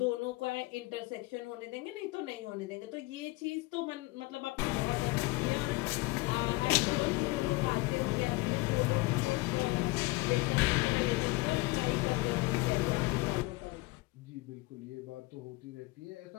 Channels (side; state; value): right; quieter; 22.8 dB